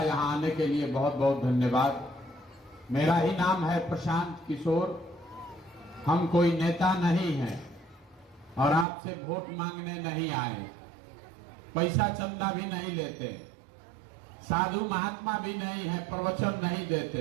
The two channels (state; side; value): drops out; left; at 8.8 s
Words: यहाँ आने के लिए बहुत बहुत धन्यवाद। मेरा ही नाम है प्रशांत किशोर। हम कोई नेता नहीं हैं और आपसे वोट मांगने नहीं आए, पैसा चंदा भी नहीं लेते, साधु महात्मा भी नहीं है, प्रवचन नहीं